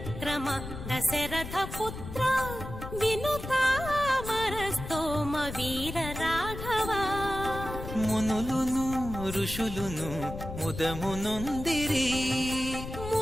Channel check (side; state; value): left; noise; rumble, 9 dB below the sound